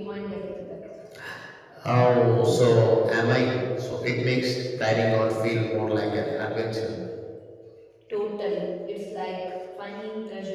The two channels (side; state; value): both; identical; correlation 1.00